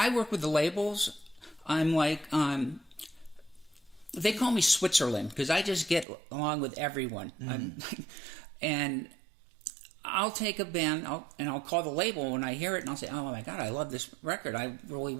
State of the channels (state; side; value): drops out; left; at 6.1 s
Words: work with the labels. I'm like, they call me Switzerland, because I just get along with everyone. And I'll take a band and I'll call the label when I hear it, and I'll say, "Oh my God, I love this record. I really